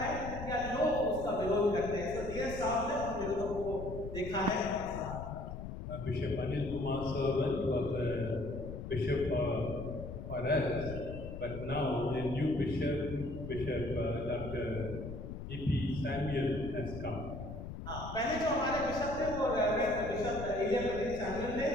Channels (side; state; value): left; noise; rumble, 8 dB below the sound